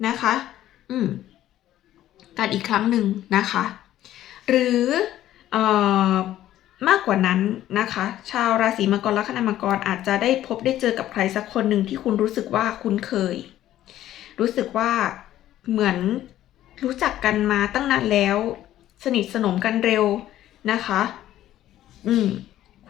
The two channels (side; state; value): right; quieter; 13.1 dB